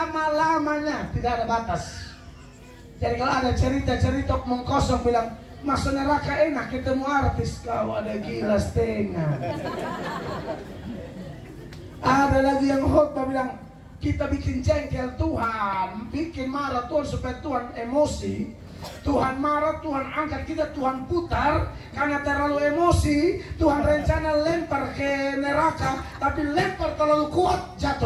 Tidak ada batas. Jadi kalau ada cerita-cerita omong kosong bilang, masuk neraka enak ketemu artis, kau ada gila setengah. Ada lagi yang khotbah bilang, kita bikin jengkel Tuhan, bikin marah Tuhan supaya Tuhan emosi. Tuhan marah, Tuhan angkat kita, Tuhan putar. Karena terlalu emosi, Tuhan rencana lempar ke neraka, tapi lempar terlalu kuat,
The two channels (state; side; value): identical; both; correlation 1.00